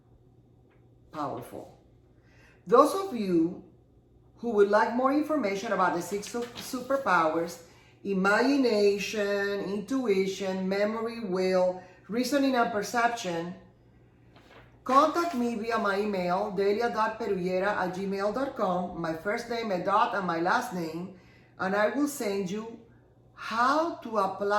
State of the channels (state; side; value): identical; both; correlation 1.00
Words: Powerful. Those of you who would like more information about the 6 superpowers, imagination, intuition, memory, will, reasoning, and perception, Contact me via my email, delia.perullera@gmail.com, my first name, a dot, and my last name, and I will send you how to